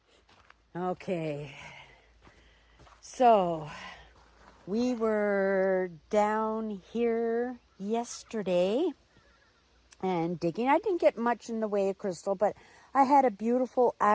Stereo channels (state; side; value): identical; both; correlation 1.00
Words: Okay. So we were down here yesterday and digging. I didn't get much in the way of crystal, but I had a beautiful